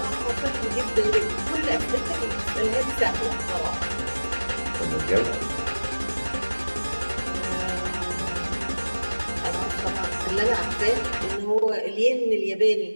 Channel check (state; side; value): inverted; both; correlation -1.00